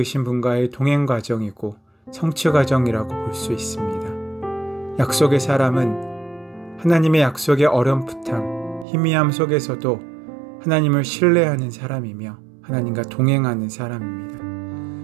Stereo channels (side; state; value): left; drops out; at 8.8 s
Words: 분과의 동행 과정이고 성취 과정이라고 볼 수 있습니다. 약속의 사람은 하나님의 약속의 어렴풋함, 희미함 속에서도 하나님을 신뢰하는 사람이며 하나님과 동행하는